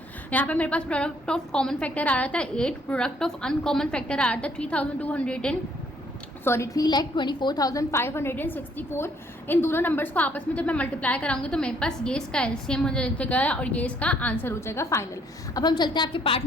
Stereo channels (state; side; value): normal; both; correlation 0.65